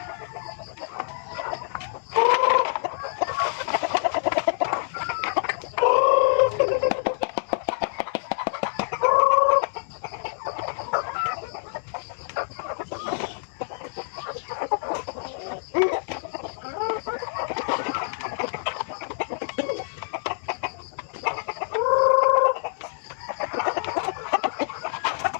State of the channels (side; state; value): right; silent; 61 dB below the other